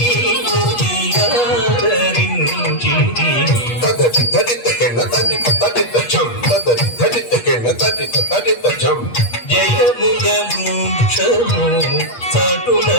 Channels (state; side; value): late; right; 8.3 ms